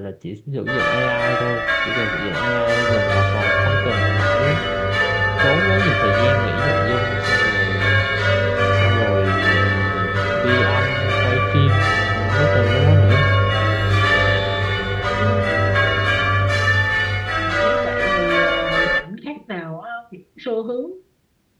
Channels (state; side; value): identical; both; correlation 1.00